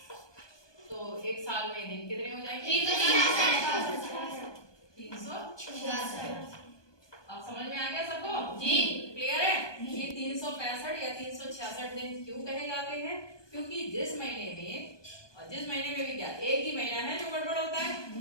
तो एक साल में दिन कितने हो जाएंगे? 366। अब समझ में आ गया सबको? जी। क्लियर है? ये 365 या 366 दिन क्यों कहे जाते हैं? क्योंकि जिस महीने में, और जिस महीने में भी क्या एक ही महीना है जो गड़बड़ होता है,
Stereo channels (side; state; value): right; late; 1.2 ms